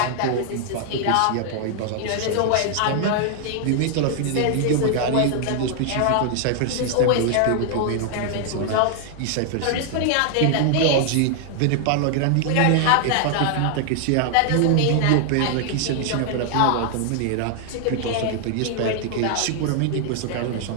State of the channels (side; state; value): both; different; correlation 0.00